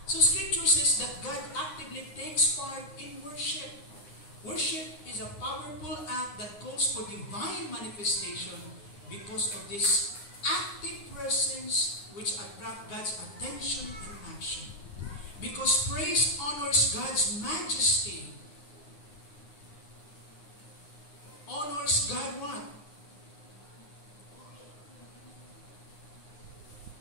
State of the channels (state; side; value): late; right; 9.6 ms